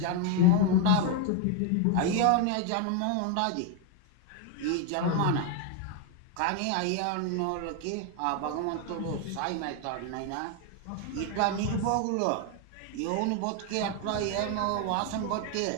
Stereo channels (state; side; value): different; both; correlation 0.01